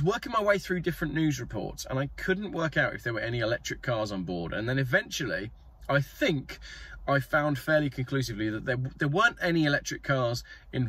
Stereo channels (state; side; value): identical; both; correlation 1.00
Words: working my way through different news reports and I couldn't work out if there were any electric cars on board. And then eventually, I think I found fairly conclusively that there weren't any electric cars